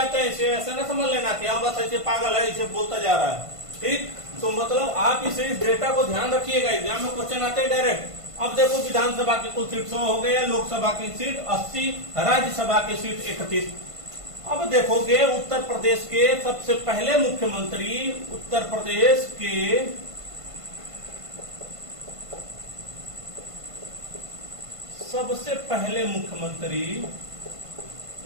हैं। इसे ऐसे ना समझ लेना कि हाँ बस ऐसे पागल है, इसे बोलता जा रहा है। ठीक, तो मतलब आप इस डेटा को ध्यान रखिएगा, एग्जाम में क्वेश्चन आते हैं डायरेक्ट। अब देखो विधानसभा की कुल सीट 100 हो गया, लोकसभा की सीट 80, राज्यसभा की सीट 31। अब देखोगे उत्तर प्रदेश के सबसे पहले मुख्यमंत्री, उत्तर प्रदेश के सबसे पहले मुख्यमंत्री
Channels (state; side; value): late; left; 1.5 ms